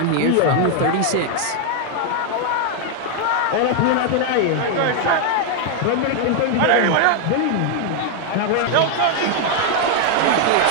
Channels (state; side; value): different; both; correlation 0.00